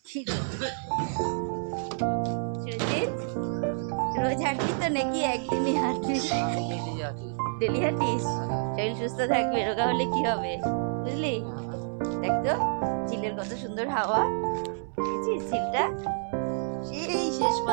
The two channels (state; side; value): silent; left; 59 dB below the other